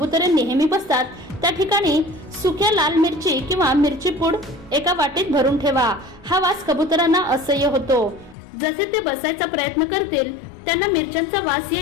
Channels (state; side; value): drops out; right; at 8.3 s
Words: नेहमी बसतात त्या ठिकाणी सुक्या लाल मिरची किंवा मिरची पूड एका वाटीत भरून ठेवा. हा वास कबुतरांना असह्य होतो. जसे ते बसायचा प्रयत्न करतील त्यांना मिरच्यांचा वास